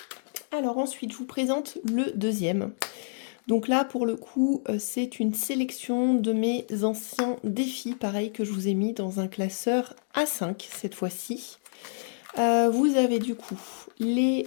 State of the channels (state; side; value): silent; right; digital silence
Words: Alors ensuite, je vous présente le deuxième. Donc là, pour le coup, c'est une sélection de mes anciens défis, pareil, que je vous ai mis dans un classeur A5 cette fois-ci. Vous avez du coup les